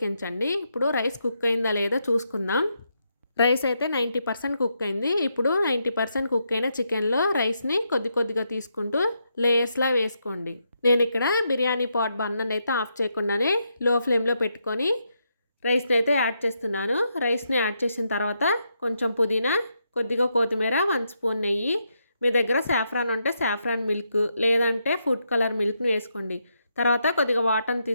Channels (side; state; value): both; inverted; correlation -0.80